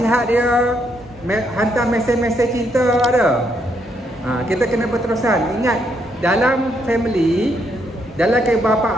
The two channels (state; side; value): normal; both; correlation 0.75